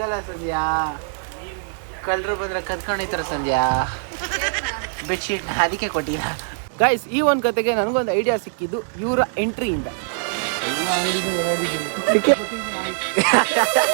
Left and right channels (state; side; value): silent; left; digital silence